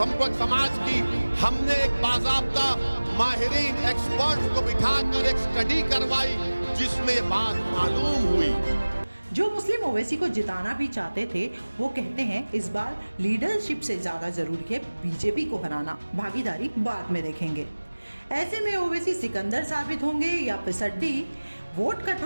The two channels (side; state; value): both; inverted; correlation -1.00